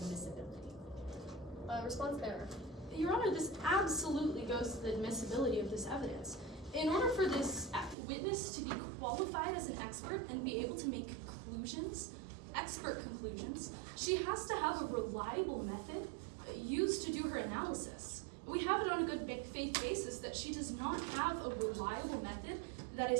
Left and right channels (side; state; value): left; drops out; at 8.0 s